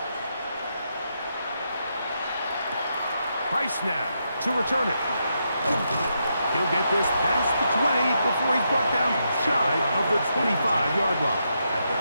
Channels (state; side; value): inverted; both; correlation -0.82